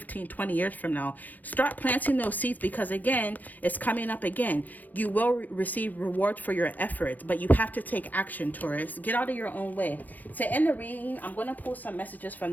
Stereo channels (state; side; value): late; right; 0.082 ms